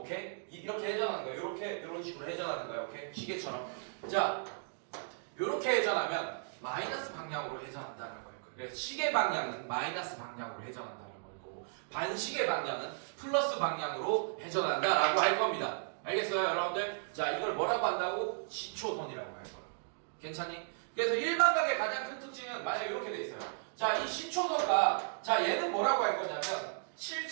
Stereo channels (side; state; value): left; silent; digital silence